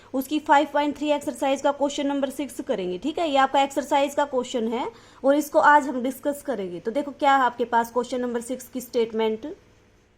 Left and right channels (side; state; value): both; identical; correlation 1.00